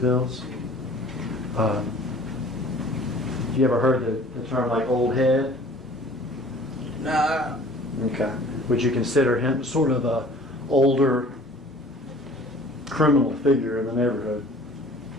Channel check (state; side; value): normal; both; correlation 0.49